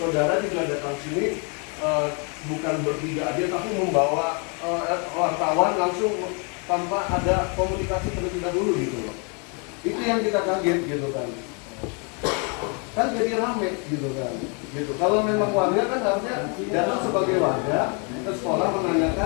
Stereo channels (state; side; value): quieter; right; 35.9 dB